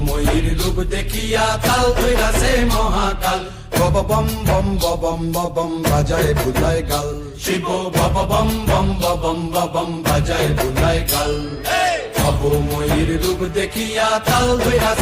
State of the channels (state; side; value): identical; both; correlation 1.00